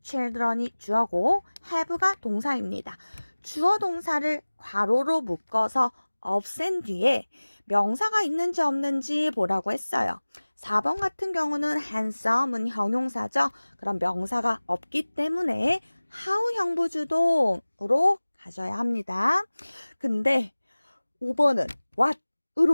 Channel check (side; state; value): both; inverted; correlation -1.00